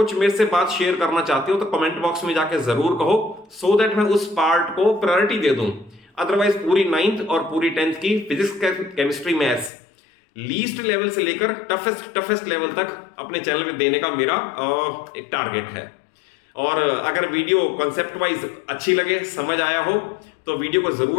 मेरे से बात शेयर करना चाहते हो तो कमेंट बॉक्स में जाके जरूर कहो, सो दैट मैं उस पार्ट को प्रायोरिटी दे दूं। अदरवाइज पूरी 9th और पूरी 10th की physics, chemistry, maths least level से लेकर टफेस्ट लेवल तक अपने चैनल पे देने का मेरा एक टारगेट है। और अगर वीडियो कॉन्सेप्ट वाइज अच्छी लगे, समझ आया हो, तो वीडियो को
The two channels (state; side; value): drops out; right; at 9.7 s